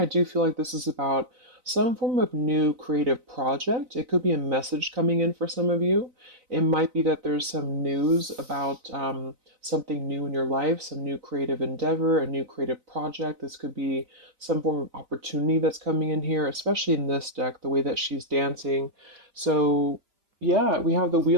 do feel like this is about some form of new creative project. It could be a message coming in for some of you. It might be that there's some news about something new in your life, some new creative endeavor, a new creative project. This could be some form of opportunity that's coming in here, especially in this deck, the way that she's dancing. So yeah, we have the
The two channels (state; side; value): late; left; 4.0 ms